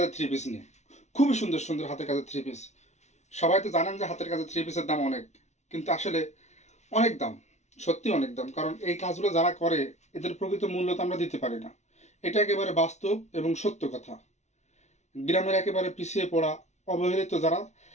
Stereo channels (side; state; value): right; late; 0.33 ms